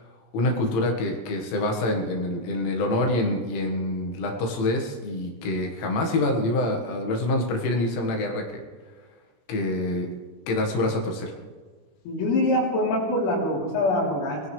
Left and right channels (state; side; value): late; right; 18 ms